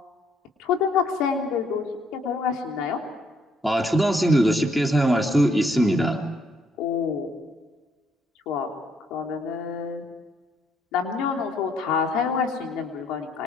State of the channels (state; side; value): normal; both; correlation 0.69